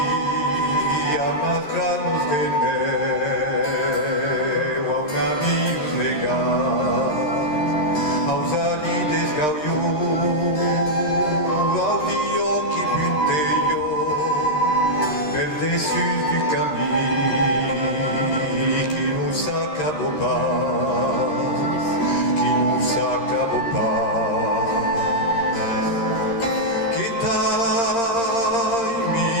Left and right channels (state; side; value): late; right; 13 ms